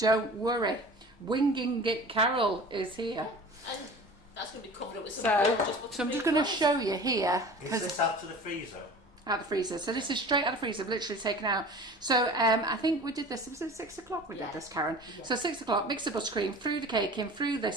worry. Winging It Carol is here. And that's going to be covered up with some So gorgeous I'm just going to show you here. Is this out of the freezer? Out of the freezer. So this is straight out of the freezer, literally taken out. So I think we did this, was it 6 o'clock we did this, Karen? Yeah. So 6 o'clock, mix the buttercream, threw the cake in, threw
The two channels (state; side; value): normal; both; correlation 0.39